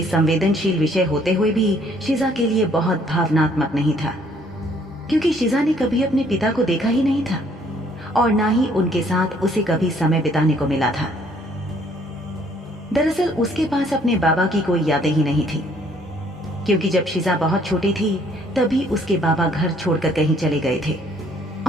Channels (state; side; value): normal; both; correlation 0.63